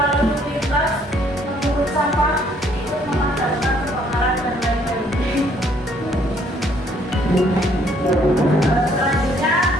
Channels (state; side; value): normal; both; correlation 0.64